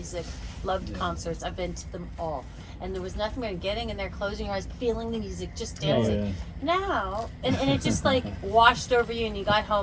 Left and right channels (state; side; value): identical; both; correlation 1.00